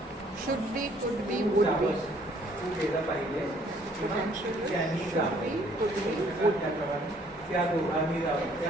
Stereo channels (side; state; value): both; normal; correlation 0.62